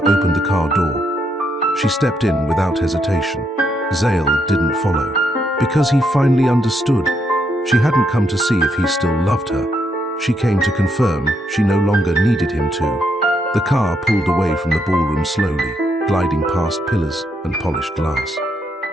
opened the car door. She stepped in without hesitation. Zale didn't follow, because he finally understood. She hadn't come to see if he still loved her. She came to confirm she no longer needed him to. The car pulled away from the ballroom slowly, gliding past pillars and polished glass.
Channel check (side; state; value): both; normal; correlation 0.77